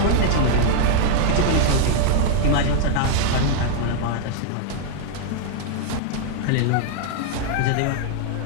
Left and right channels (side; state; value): both; different; correlation 0.00